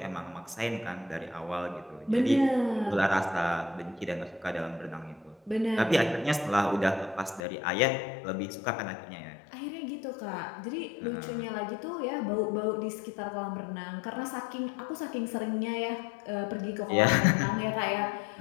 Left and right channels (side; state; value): right; drops out; at 7.4 s